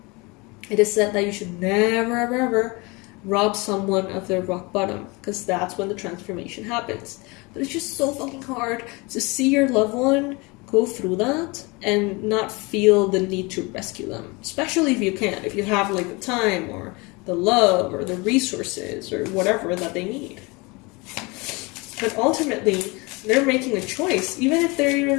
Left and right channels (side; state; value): right; quieter; 26.4 dB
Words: It is said that you should never, ever, ever rob someone of their rock bottom, because that's when the transformation happens. But it's just so fucking hard to see your loved one go through that and not feel the need to rescue them. Especially if you can. If you have like the time or the love or the resources or whatever that they need. But ultimately, they're making a choice. Even if they're